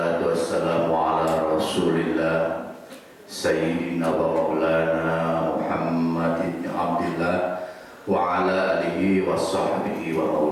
wassalamu ala rasulillah Sayyidina wa maulana Muhammad ibn Abdillah wa ala alihi wa sahbihi wa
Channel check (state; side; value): identical; both; correlation 1.00